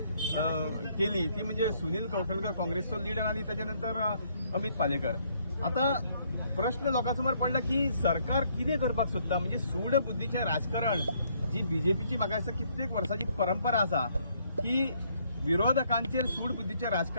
केली ती म्हणजे सुनील कौठणकर काँग्रेसचो लीडर आणि त्याच्यानंतर अमित पालेकर। आता प्रश्न लोकांसमोर पडला की सरकार कितें करपाक सोदता, म्हणजे सूड बुद्धीचें राजकारण जी बीजेपीची म्हाका दिसता कित्येक वर्सांची परंपरा आसा की विरोधकांचेर सूड बुद्धीचें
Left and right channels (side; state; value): both; inverted; correlation -0.68